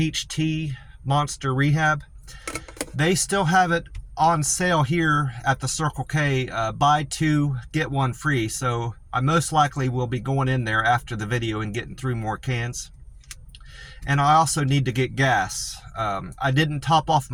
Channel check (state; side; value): identical; both; correlation 1.00